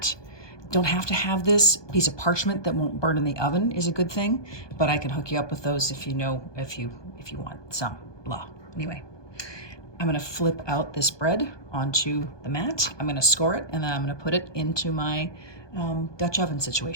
Don't have to have this. Piece of parchment that won't burn in the oven is a good thing, but I can hook you up with those if you want some, blah. Anyway, I'm gonna flip out this bread onto the mat. I'm gonna score it, and then I'm gonna put it into my Dutch oven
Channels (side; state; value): right; late; 1.2 ms